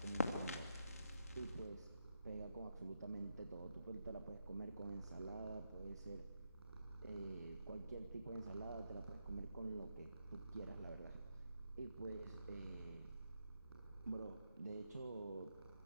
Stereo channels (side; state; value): both; inverted; correlation -0.82